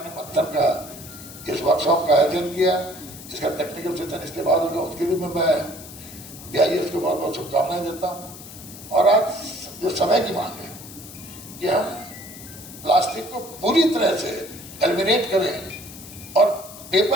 मंथन का इस वर्कशॉप का आयोजन किया। इसका टेक्निकल सेशन इसके बाद होगा, उसके लिए मैं BIS को बहुत बहुत शुभकामनाएं देता हूँ। और आज जो समय की मांग है कि हम प्लास्टिक को पूरी तरह से एलिमिनेट करें और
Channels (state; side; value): noise; left; hiss, 15 dB below the sound